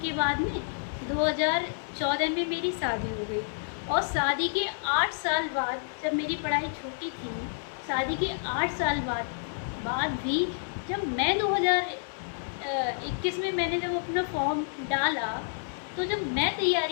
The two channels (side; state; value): right; silent; digital silence